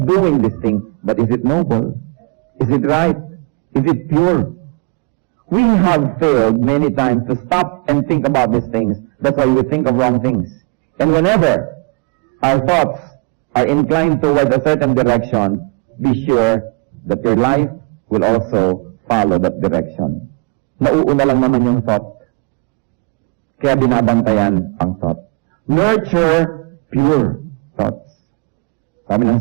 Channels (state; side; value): quieter; left; 32.6 dB